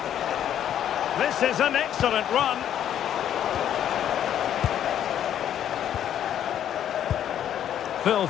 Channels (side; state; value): right; quieter; 10.3 dB